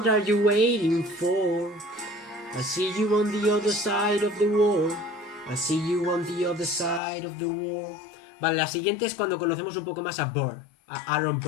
are you waiting for? I'll see you on the other side of the war. I'll see you on the other side of the war. Vale, la siguiente es cuando conocemos un poco más a Burr, a Aaron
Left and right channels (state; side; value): drops out; right; at 7.0 s